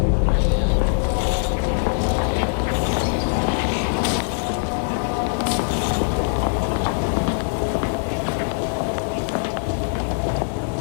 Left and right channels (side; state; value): right; silent; digital silence